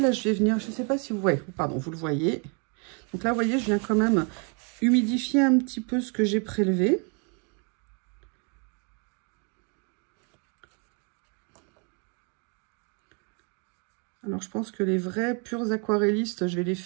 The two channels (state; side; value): quieter; left; 36.7 dB